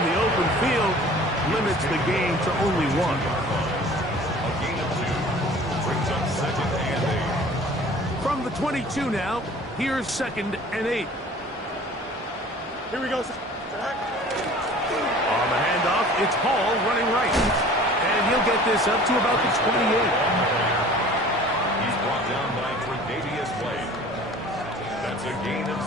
the open field limits the game to only 1. A gain of 2 brings up second and 8. From the 22 now, here's second and 8. Here we go. On the handoff, it's Hall running right. And he'll get this up to about the 28. He's brought down by Tre'Davious White. That's a gain of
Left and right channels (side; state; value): both; normal; correlation 0.46